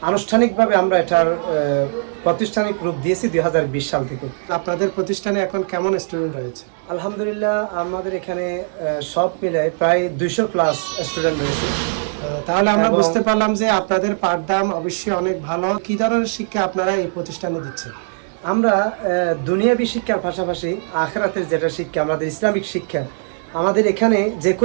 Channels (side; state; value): left; silent; 66 dB below the other